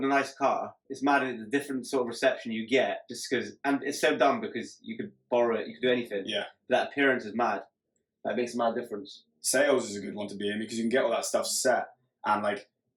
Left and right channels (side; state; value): both; identical; correlation 1.00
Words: a nice car, it's mad at the different sort of reception you get, just because, and it's so dumb because you could borrow it, you could do anything. Yeah. That appearance is mad. That makes a mad difference. Sales is a good one to be in, because you can get all that stuff set, and like